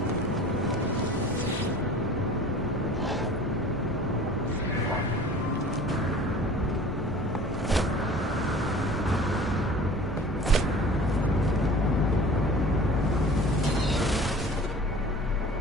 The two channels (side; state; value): both; normal; correlation 0.44